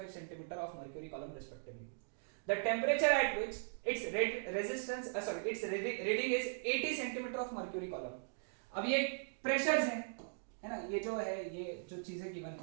centimeter of mercury column respectively. The temperature at which its its reading is 80 centimeter of mercury column. अब ये pressures हैं, है ना, ये जो है, ये जो चीजें गिवन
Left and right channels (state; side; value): silent; left; digital silence